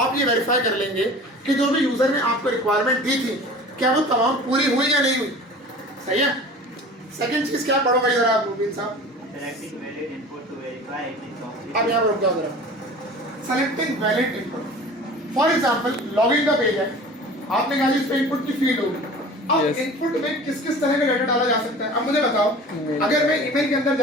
ये वेरीफाई कर लेंगे कि जो भी यूजर ने आपको रिक्वायरमेंट दी थी क्या वो तमाम पूरी हुई या नहीं हुई। सही है। सेकंड चीज क्या पढ़ो भाई जरा आप मुबीन साहब, अब यहाँ रुक जाओ जरा, selecting valid input. For example login का पेज है, आपने कहा इस पे इनपुट की फील्ड होगी, अब इनपुट में किस किस तरह का डाटा डाला जा सकता है। अब मुझे बताओ अगर मैं ईमेल के अंदर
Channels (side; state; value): both; normal; correlation 0.40